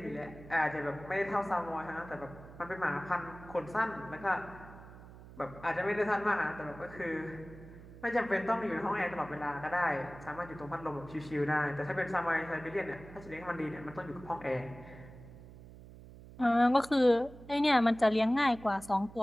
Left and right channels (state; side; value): noise; right; hum, 17 dB below the sound